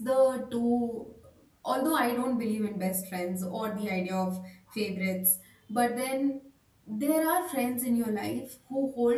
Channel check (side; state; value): both; identical; correlation 1.00